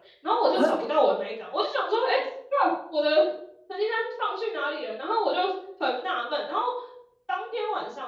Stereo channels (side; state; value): both; identical; correlation 1.00